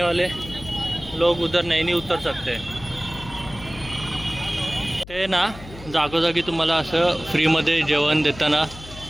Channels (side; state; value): left; noise; hum, 16 dB below the sound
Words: वाले लोग उधर नैनी उतर सकते हैं. ते ना जागोजागी तुम्हाला असं फ्रीमध्ये जेवण देताना